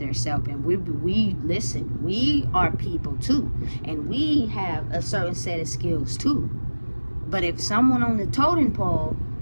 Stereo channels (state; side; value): inverted; both; correlation -1.00